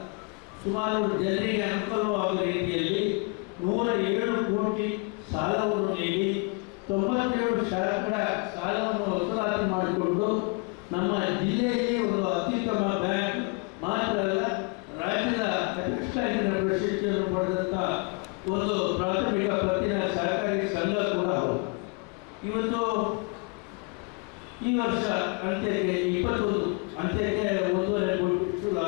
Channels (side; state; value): right; quieter; 31.5 dB